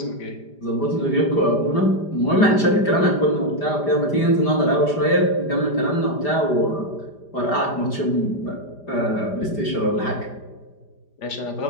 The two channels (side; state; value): right; late; 5.0 ms